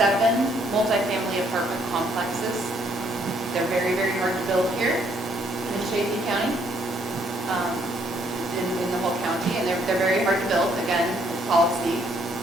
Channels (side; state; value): both; normal; correlation 0.68